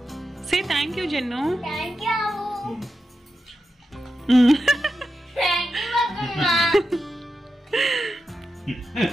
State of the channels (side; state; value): both; normal; correlation 0.89